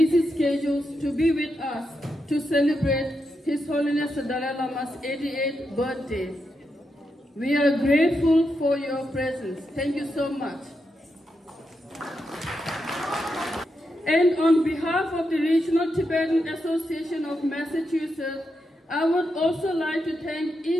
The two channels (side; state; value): both; normal; correlation 0.85